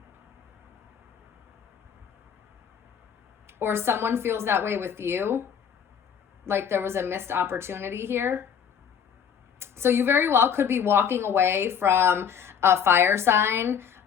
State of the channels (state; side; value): quieter; right; 7.7 dB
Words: Or someone feels that way with you, like there was a missed opportunity here. So you very well could be walking away from a fire sign,